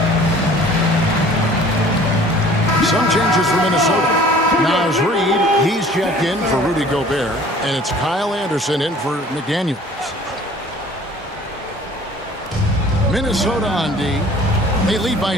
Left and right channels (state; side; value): normal; both; correlation 0.50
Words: Some changes for Minnesota. Naz Reid, he's checked in for Rudy Gobert, and it's Kyle Anderson in for McDaniels. Minnesota on D. They lead by